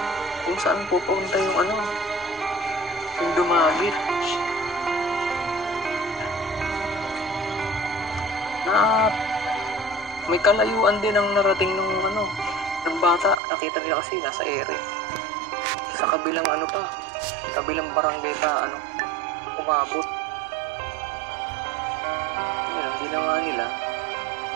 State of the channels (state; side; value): drops out; left; at 13.4 s